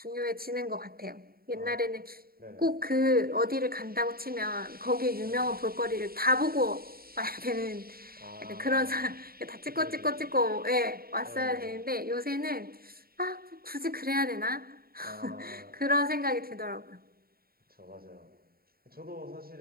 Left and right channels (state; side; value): late; left; 0.44 ms